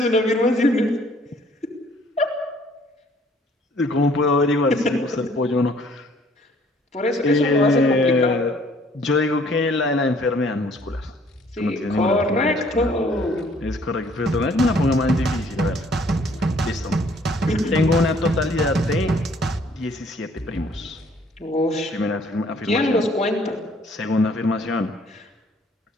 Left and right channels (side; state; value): both; normal; correlation 0.60